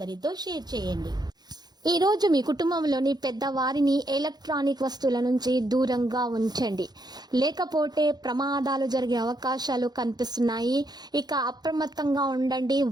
షేర్ చేయండి. ఈ రోజు మీ కుటుంబంలోని పెద్దవారిని ఎలక్ట్రానిక్ వస్తువుల నుంచి దూరంగా ఉంచండి, లేకపోతే ప్రమాదాలు జరిగే అవకాశాలు కనిపిస్తున్నాయి. ఇక అప్రమత్తంగా ఉండండి.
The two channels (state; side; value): late; left; 0.20 ms